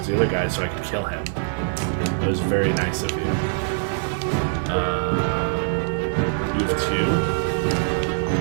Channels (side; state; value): left; silent; digital silence